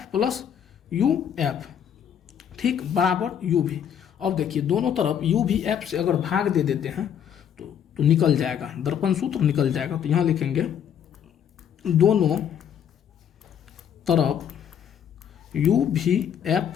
प्लस UF, ठीक, बराबर UV। अब देखिए दोनों तरफ UVF से अगर भाग दे देते हैं तो निकल जाएगा, दर्पण सूत्र निकल जाएगा। तो यहाँ लिखेंगे दोनों तरफ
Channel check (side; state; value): right; quieter; 8.8 dB